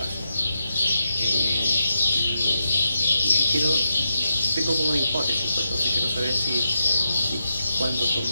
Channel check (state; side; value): inverted; both; correlation -0.86